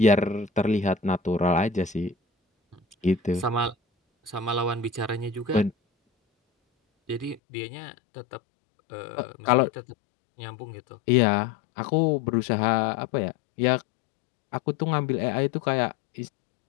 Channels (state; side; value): drops out; right; at 7.4 s